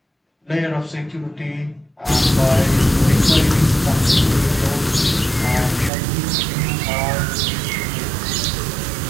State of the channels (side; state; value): left; drops out; at 5.9 s